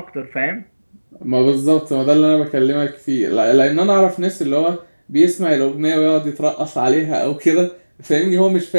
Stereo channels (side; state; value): both; inverted; correlation -1.00